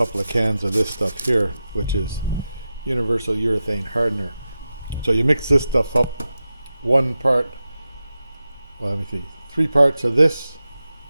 of cans of this stuff here, which is universal urethane hardener. So you mix this stuff up, 1 part, well, let me see, 3 parts of this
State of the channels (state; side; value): inverted; both; correlation -0.92